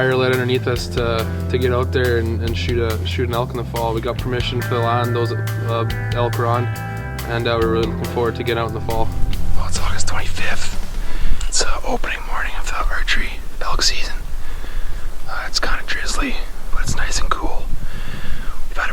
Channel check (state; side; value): identical; both; correlation 1.00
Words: lit underneath us to get out there and shoot an elk in the fall. We got permission for the land those elk were on, and we're really looking forward to getting out in the fall. Well, it's August 25th. It's opening morning of the archery elk season. It's kind of drizzly, but it's nice and cool. We've had